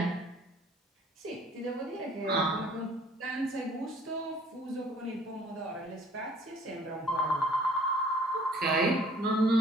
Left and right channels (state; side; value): normal; both; correlation 0.55